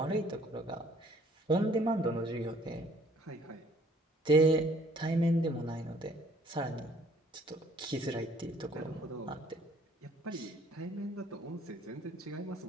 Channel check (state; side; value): normal; both; correlation 0.59